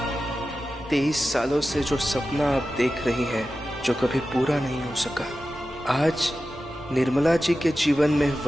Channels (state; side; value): normal; both; correlation 0.93